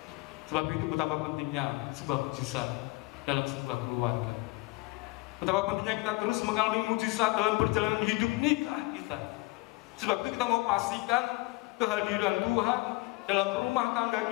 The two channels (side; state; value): right; quieter; 23.4 dB